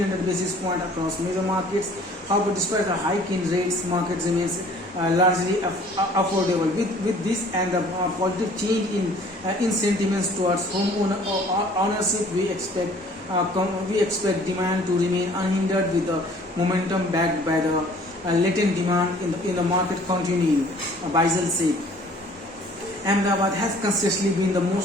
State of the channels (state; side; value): normal; both; correlation 0.54